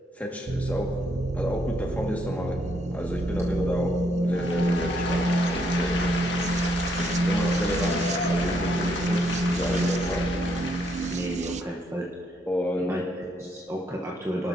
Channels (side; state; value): both; normal; correlation 0.74